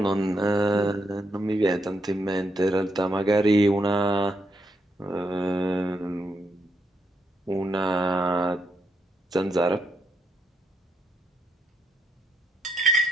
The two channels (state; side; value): normal; both; correlation 0.78